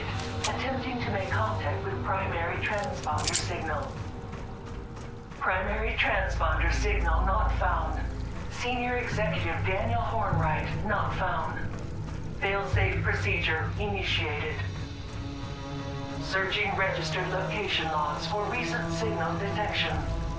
Attempting to make contact with primary transponder signal. Primary transponder signal not found. Senior Executive Daniel Hornwright not found. Failsafe procedure initiated. Searching registered location logs for recent signal detection.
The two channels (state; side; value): identical; both; correlation 1.00